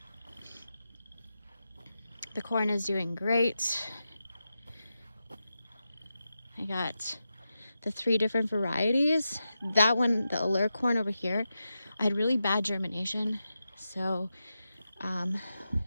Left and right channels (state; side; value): inverted; both; correlation -0.90